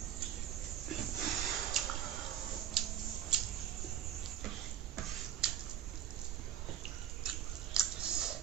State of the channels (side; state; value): left; quieter; 10.3 dB